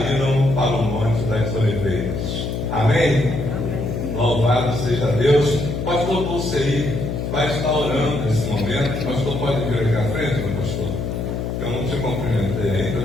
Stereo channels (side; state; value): left; noise; hum, 3 dB below the sound